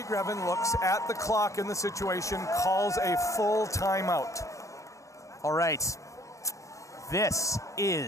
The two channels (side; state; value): right; late; 0.15 ms